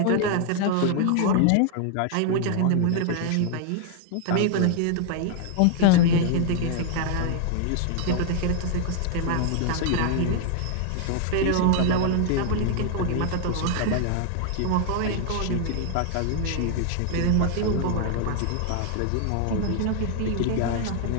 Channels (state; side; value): different; both; correlation 0.00